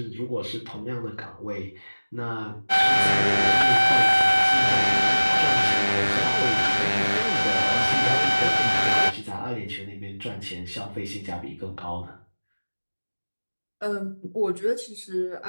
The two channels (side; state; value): both; inverted; correlation -1.00